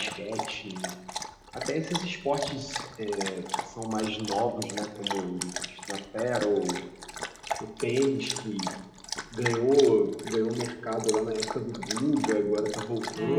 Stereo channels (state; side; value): identical; both; correlation 1.00